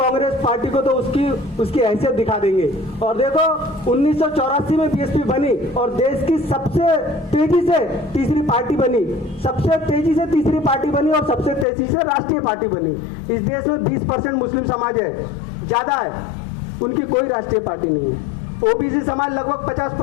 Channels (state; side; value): drops out; right; at 11.7 s